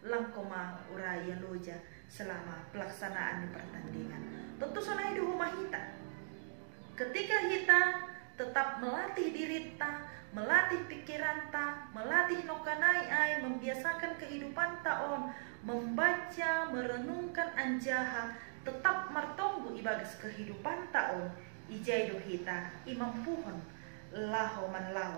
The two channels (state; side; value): silent; left; digital silence